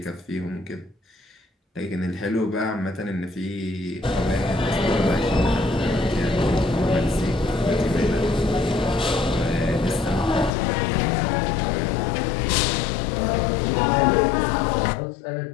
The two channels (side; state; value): right; drops out; at 10.5 s